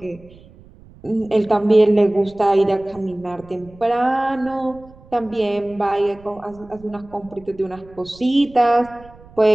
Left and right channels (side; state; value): right; noise; rumble, 23 dB below the sound